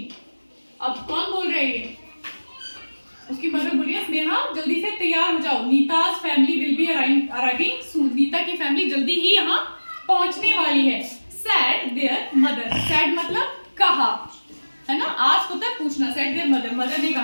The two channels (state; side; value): inverted; both; correlation -1.00